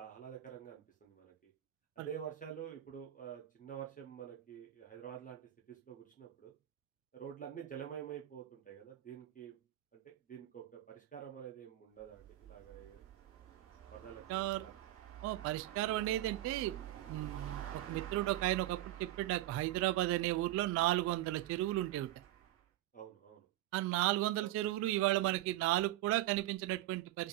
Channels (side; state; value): left; quieter; 14.9 dB